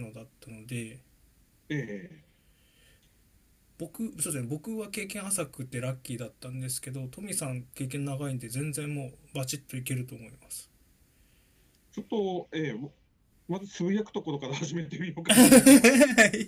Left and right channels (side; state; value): both; identical; correlation 1.00